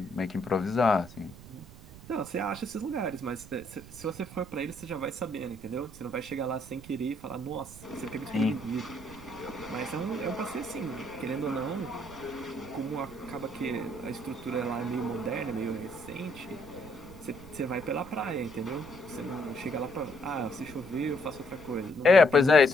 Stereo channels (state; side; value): noise; right; rumble, 17 dB below the sound